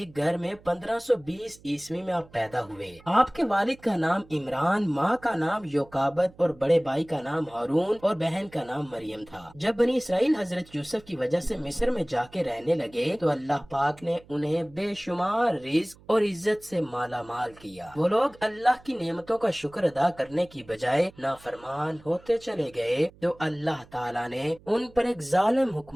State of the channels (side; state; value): right; noise; hum, 25 dB below the sound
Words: گھر میں 1520 عیسوی میں آپ پیدا ہوئے۔ آپ کے والد کا نام عمران، ماں کا نام یوکابد اور بڑے بھائی کا نام ہارون اور بہن کا نام مریم تھا۔ جب بنی اسرائیل حضرت یوسف کی وجہ سے مصر میں جا کے رہنے لگے تو اللہ پاک نے انہیں بے شمار رزق اور عزت سے مالا مال کیا۔ وہ لوگ اللہ کی نعمتوں کا شکر ادا کرنے کی بجائے نافرمان ہوتے چلے گئے تو اللہ تعالیٰ نے ان پر ایک ظالم